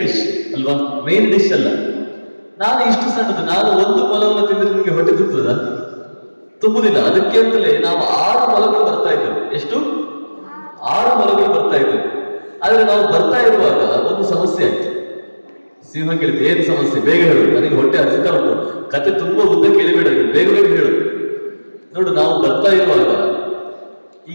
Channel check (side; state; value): both; inverted; correlation -1.00